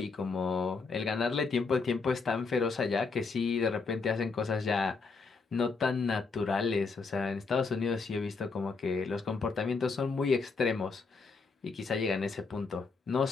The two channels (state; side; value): quieter; right; 4.5 dB